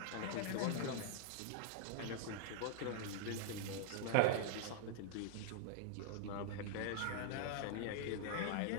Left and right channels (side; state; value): both; different; correlation -0.01